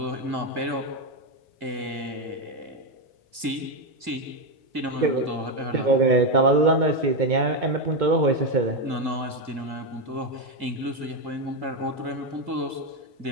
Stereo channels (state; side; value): late; left; 2.2 ms